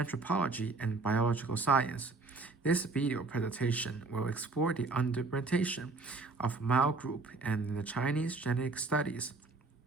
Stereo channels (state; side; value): quieter; left; 3.7 dB